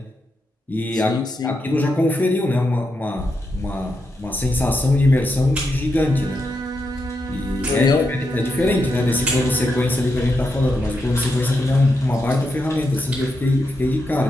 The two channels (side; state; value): both; normal; correlation 0.84